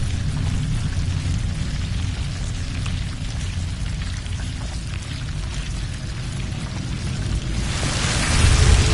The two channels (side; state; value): both; identical; correlation 1.00